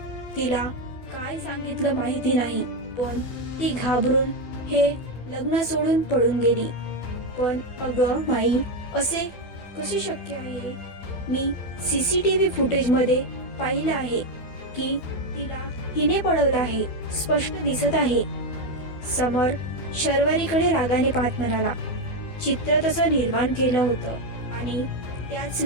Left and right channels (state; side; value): late; right; 12 ms